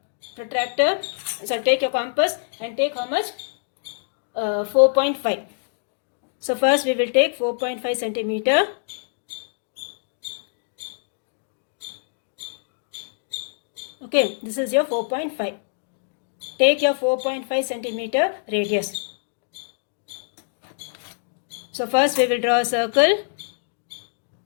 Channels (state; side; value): silent; right; digital silence